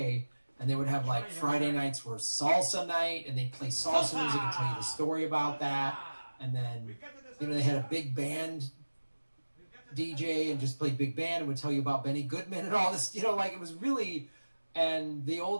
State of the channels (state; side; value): inverted; both; correlation -1.00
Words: and they would have like Friday nights were salsa night, and they'd play salsa music and tell you the story about that, and then they had a big band DJ and just played big band and would tell you about Benny Goodman and all this, like it was really, and the